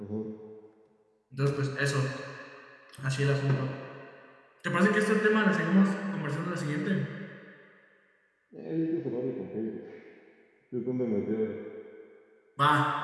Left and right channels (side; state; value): both; identical; correlation 1.00